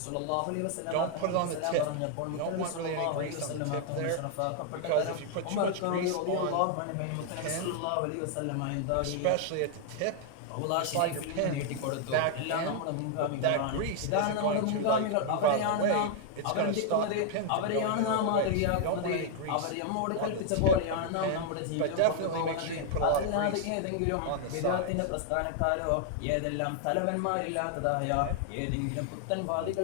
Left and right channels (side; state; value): both; different; correlation 0.00